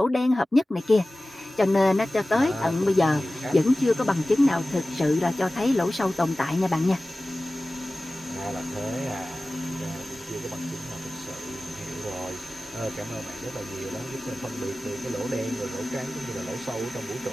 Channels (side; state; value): both; normal; correlation 0.97